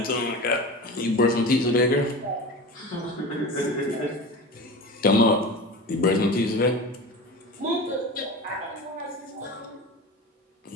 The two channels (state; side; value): normal; both; correlation 0.30